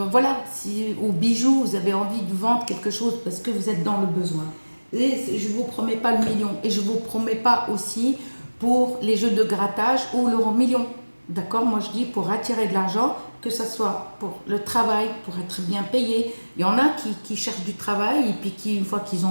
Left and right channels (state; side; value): inverted; both; correlation -1.00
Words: voilà, si, ou bijoux, vous avez envie de vendre quelque chose parce que vous êtes dans le besoin. Et je ne vous promets pas le million et je ne vous promets pas aussi pour les jeux de grattage ou l'euro million. D'accord? Moi je dis pour attirer de l'argent, que ce soit pour le travail, pour être bien payé. Il y en a qui cherchent du travail et puis qui, une fois qu'ils